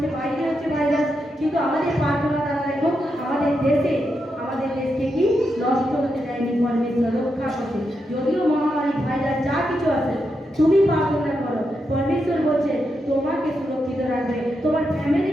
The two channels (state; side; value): normal; both; correlation 0.84